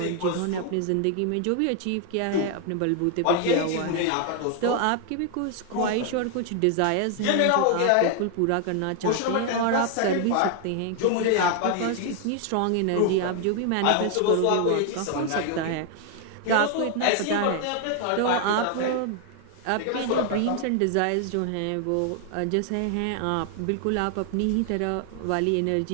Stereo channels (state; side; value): different; both; correlation 0.00